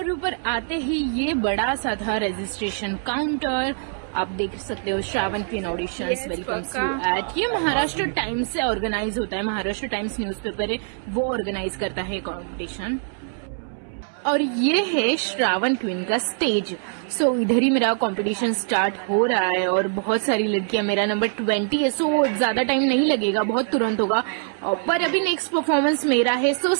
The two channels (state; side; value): silent; left; 63 dB below the other